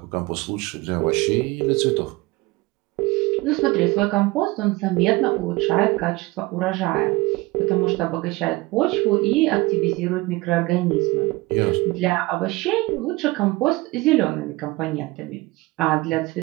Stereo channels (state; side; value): quieter; left; 21.3 dB